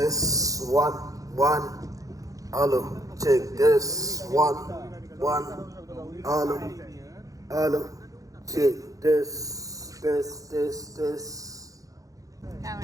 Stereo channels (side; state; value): left; late; 0.17 ms